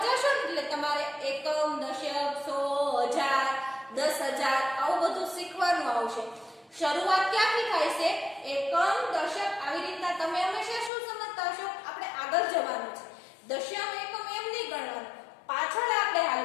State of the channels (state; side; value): drops out; right; at 10.9 s